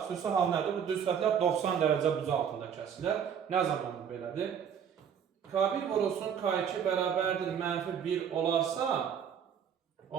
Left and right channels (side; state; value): left; quieter; 8.0 dB